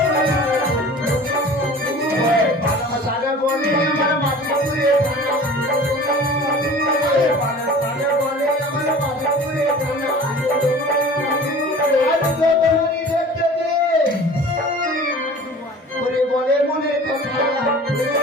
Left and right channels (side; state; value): both; normal; correlation 0.42